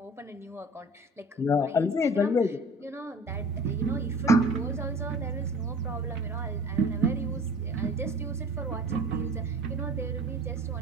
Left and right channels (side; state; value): both; normal; correlation 0.44